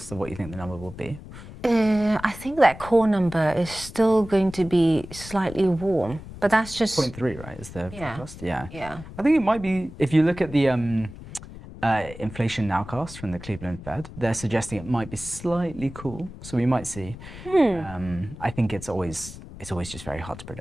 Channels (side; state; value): left; noise; rumble, 14 dB below the sound